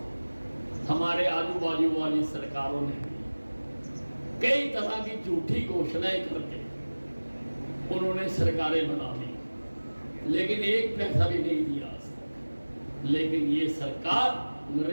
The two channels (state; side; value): inverted; both; correlation -1.00